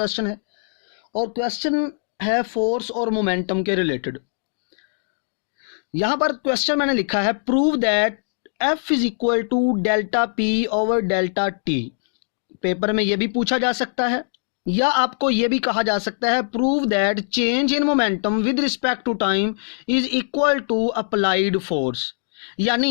है। और क्वेश्चन है फोर्स और मोमेंटम के रिलेटेड। यहाँ पर क्वेश्चन मैंने लिखा है, prove that F is equal to delta P over delta T. Paper में ये भी पूछा जा सकता है या आपको ये भी कहा जा सकता है, prove that change in momentum with respect to time is equal to applied force.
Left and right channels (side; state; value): right; silent; digital silence